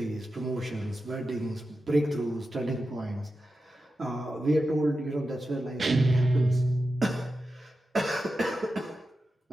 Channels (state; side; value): normal; both; correlation 0.91